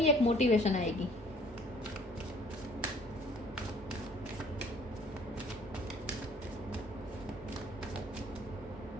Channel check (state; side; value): normal; both; correlation 0.55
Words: एक मोटिवेशन आएगी।